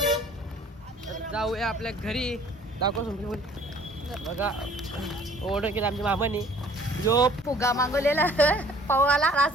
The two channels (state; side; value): normal; both; correlation 0.54